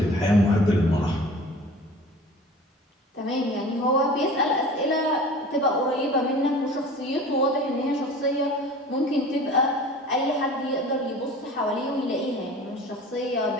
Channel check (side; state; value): both; normal; correlation 0.41